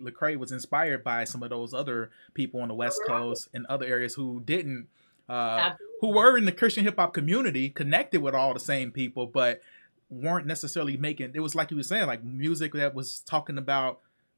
was inspired by some of those other people on the West Right. Coast and other areas who didn't, who Absolutely. were in the Christian hip hop community, connected with all the same people, but weren't necessarily making. It was like you were saying, like music that was talking about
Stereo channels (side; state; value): both; inverted; correlation -1.00